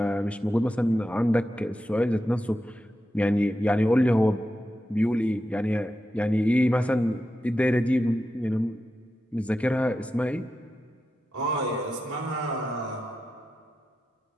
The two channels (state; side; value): normal; both; correlation 0.90